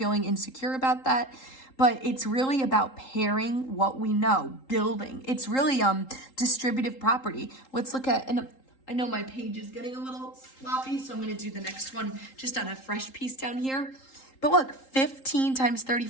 insecure about that, but it's really about pairing what we know, building. It's really distributive property. Let's look at, and I know my page is getting a little sloppy, so I'm going to do the next one just on a fresh piece down here. But look, 15 times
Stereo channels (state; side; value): late; right; 3.8 ms